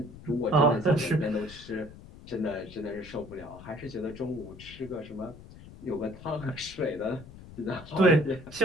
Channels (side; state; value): left; noise; rumble, 17 dB below the sound